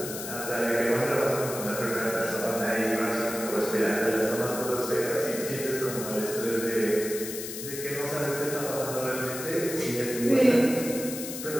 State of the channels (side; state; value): left; noise; hiss, 8 dB below the sound